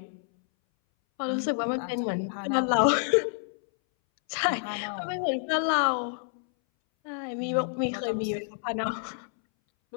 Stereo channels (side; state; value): right; silent; 59 dB below the other